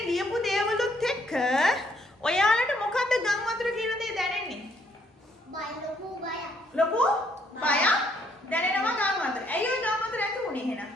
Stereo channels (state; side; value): normal; both; correlation 0.69